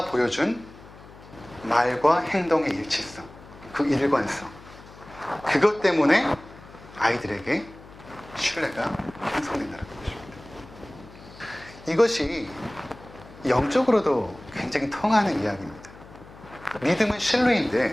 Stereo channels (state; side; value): noise; left; hum, 20 dB below the sound